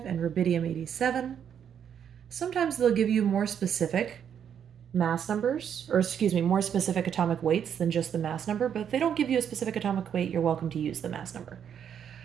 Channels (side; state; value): left; quieter; 8.5 dB